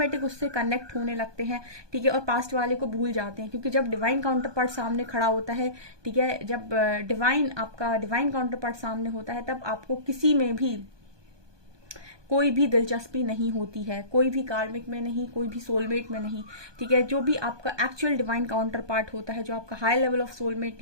उससे कनेक्ट होने लगते हैं, ठीक है, और पास्ट वाले को भूल जाते हैं। क्योंकि जब डिवाइन काउंटर पार्ट सामने खड़ा होता है, ठीक है, जब आपका डिवाइन काउंटर पार्ट सामने होता है, तब आपको किसी में भी कोई भी दिलचस्पी नहीं होती है, कोई भी कार्मिक में नहीं, कोई भी सोलमेट में नहीं, ठीक है। जो भी आपका एक्चुअल डिवाइन काउंटर पार्ट होता है, जो आपका हाई लेवल ऑफ सोलमेट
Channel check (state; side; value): late; left; 1.2 ms